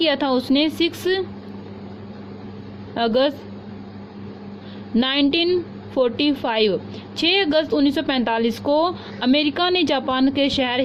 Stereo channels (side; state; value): both; identical; correlation 1.00